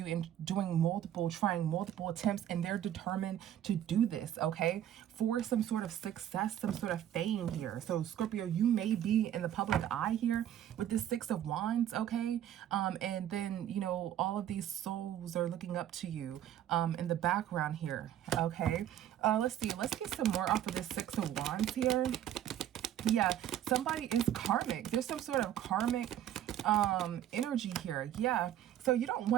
and trying multiple attempts, and they're determined to do this, okay? For some sort of success, some sort of fame here. So Scorpio, you may be in the public eye here with this Six of Wands, okay? And then, you know, all of these souls are looking up to you in the background here, okay? Let's see. Let's get some more off of this Six of Wands here. Yeah, somebody is karmic. There's some sort of karmic energy here. Yeah, so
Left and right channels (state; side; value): quieter; left; 11.2 dB